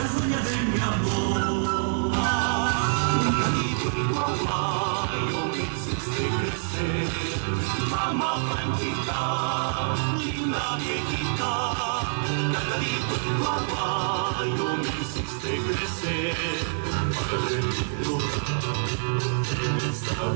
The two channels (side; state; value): left; silent; digital silence